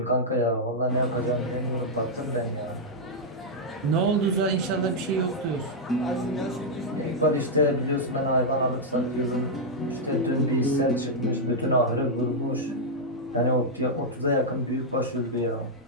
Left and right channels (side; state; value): both; normal; correlation -0.04